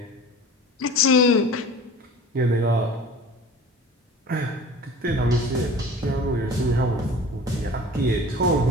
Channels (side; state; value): both; normal; correlation 0.40